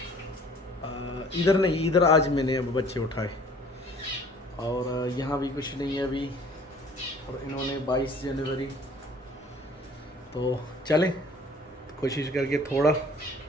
इधर नहीं, इधर आज मैंने अब बच्चे उठाए। और यहाँ भी कुछ नहीं है अभी। और इन्होंने 22 जनवरी। तो चलें कोशिश करके थोड़ा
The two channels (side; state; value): both; normal; correlation 0.52